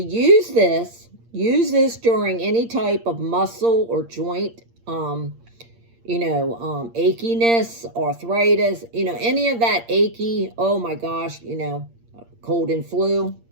this during any type of muscle or joint, achiness, arthritis, any of that achy, oh my gosh, cold and flu.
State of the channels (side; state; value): left; late; 8.6 ms